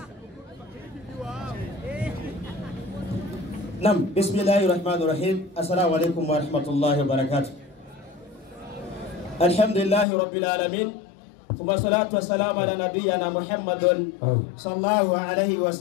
Nam, bismillahirrahmanirrahim. Assalamu alaikum warahmatullahi wabarakatuh. Alhamdulillahi rabbil alamin. Thumma salatu wassalamu ala nabiyyina Muhammadin sallallahu alaihi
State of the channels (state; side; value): drops out; right; at 10.1 s